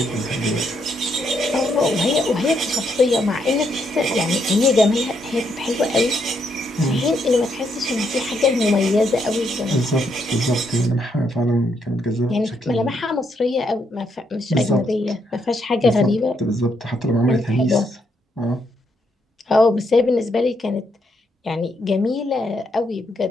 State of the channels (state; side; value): normal; both; correlation 0.76